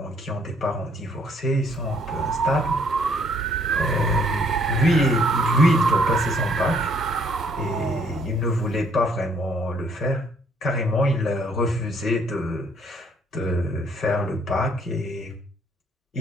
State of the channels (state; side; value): normal; both; correlation 0.65